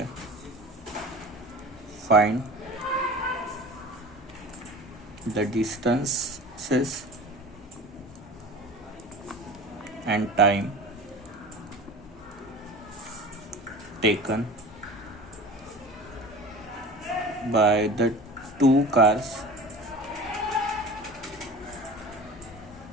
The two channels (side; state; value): both; normal; correlation 0.38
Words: Find the distances and time taken by the two cars